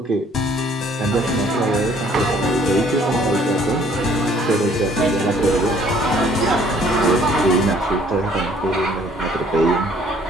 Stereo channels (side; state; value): both; normal; correlation 0.59